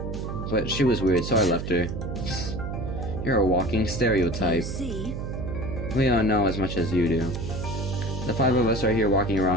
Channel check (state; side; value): noise; right; hum, 5 dB below the sound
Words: but she was weird, so I left her. You're a walking You stereotype. see, We don't know as much as you do. The 5 of us are here walking